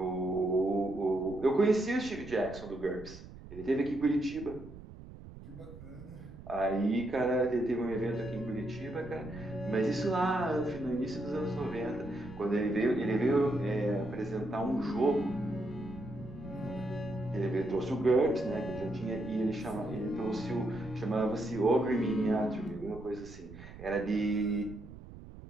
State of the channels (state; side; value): noise; right; rumble, 15 dB below the sound